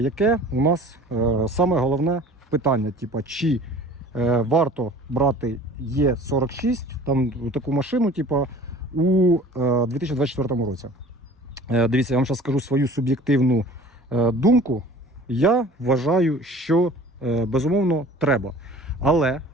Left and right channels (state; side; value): normal; both; correlation 0.46